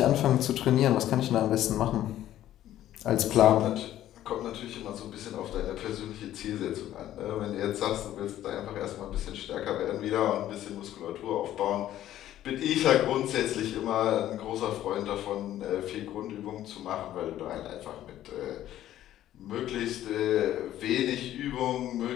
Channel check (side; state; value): right; quieter; 12.8 dB